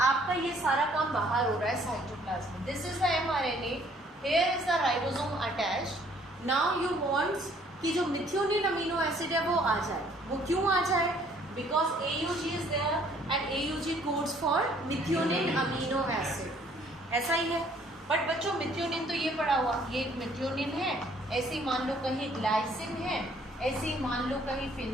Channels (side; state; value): both; normal; correlation 0.61